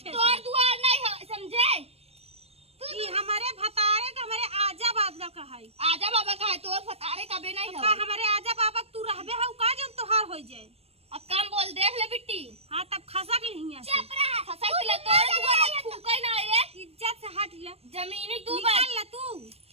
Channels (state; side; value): late; left; 0.29 ms